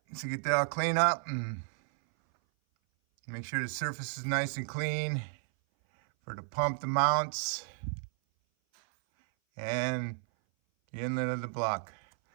So get that all cleaned up and make sure the surface is nice and clean for the pump, the mounts, and the inlet of the block.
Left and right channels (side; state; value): left; silent; 56 dB below the other